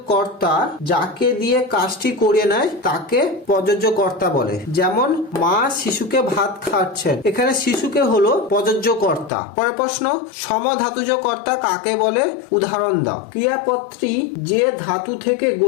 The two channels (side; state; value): right; drops out; at 9.3 s